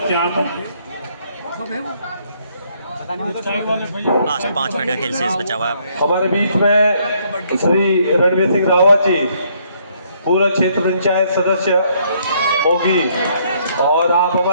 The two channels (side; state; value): both; inverted; correlation -0.68